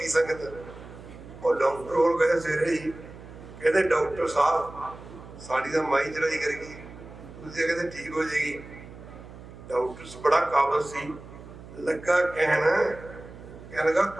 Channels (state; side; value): noise; right; hum, 16 dB below the sound